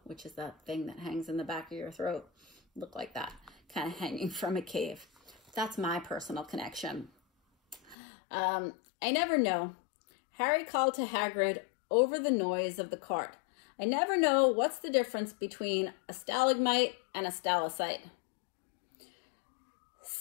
which is that thing that hangs in the back of your throat. Look like that, kind of hanging from a cave. That's my personal connection. I never know. Harry called to Hagrid over the noise of the cart. "I never know what's the difference between a stalagmite and a stalactite."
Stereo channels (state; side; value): drops out; right; at 8.0 s